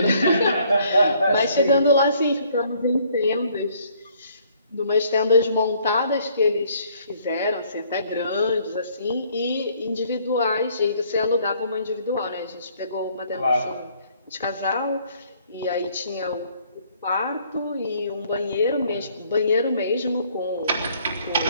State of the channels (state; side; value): inverted; both; correlation -0.63